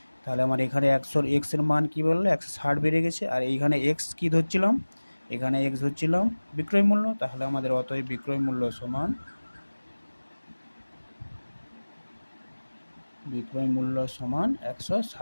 তাহলে আমার এখানে 100 এক্সের মান কি বললো 160 বেড়ে গেছে, আর এইখানে এক্স কি ধরছিলাম, এখানে এক্স ধরছিলাম বিক্রয় মূল্য, তাহলে আমাদের অতএব বিক্রয় মূল্য সমান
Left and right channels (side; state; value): both; inverted; correlation -1.00